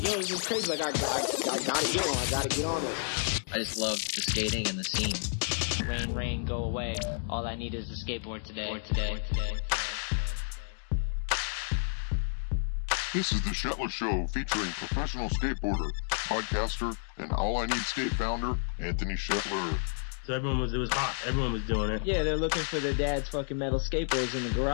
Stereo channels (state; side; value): silent; right; digital silence